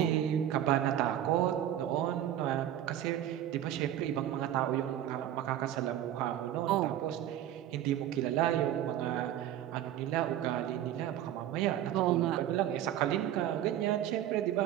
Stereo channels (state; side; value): quieter; left; 11.7 dB